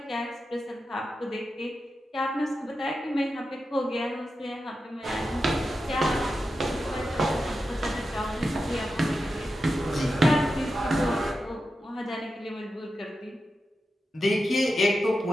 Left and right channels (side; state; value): both; normal; correlation 0.90